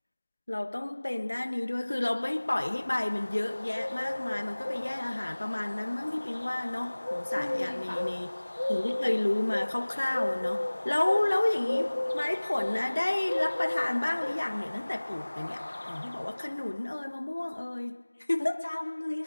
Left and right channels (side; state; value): both; inverted; correlation -1.00